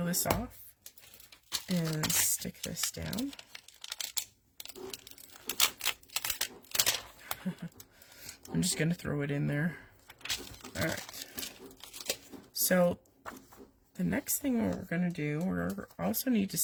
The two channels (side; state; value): both; identical; correlation 1.00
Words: this off and stick this down. I'm just going to throw it in there. Alright. So the next thing we're going to do, we also need to